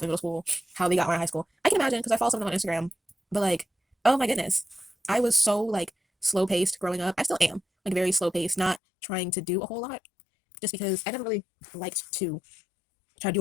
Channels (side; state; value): right; drops out; at 8.8 s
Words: in middle school, how they got more in high school. I can imagine because I follow some of them on Instagram. But like, oh my goodness, I was so like slow paced growing up. I still am like very slow paced, not trying to do a whole lot, just because I never really liked to try to do a